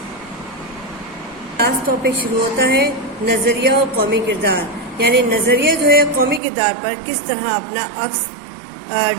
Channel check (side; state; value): left; drops out; at 6.4 s